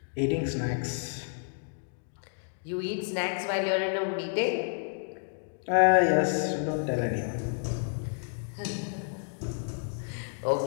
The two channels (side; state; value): right; silent; digital silence